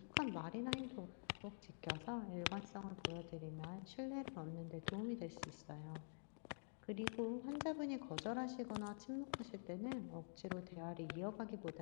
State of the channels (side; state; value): right; silent; digital silence